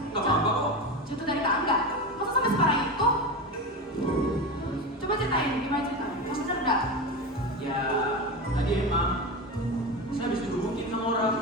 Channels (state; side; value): normal; both; correlation 0.22